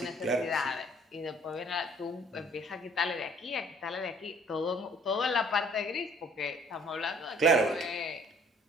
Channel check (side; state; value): both; normal; correlation 0.57